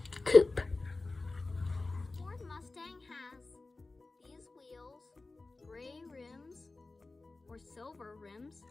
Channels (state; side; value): quieter; right; 3.4 dB